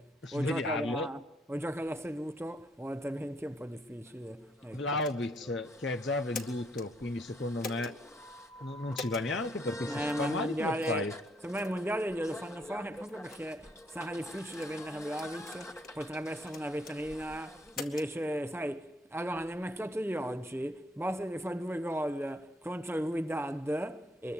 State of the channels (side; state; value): both; normal; correlation 0.70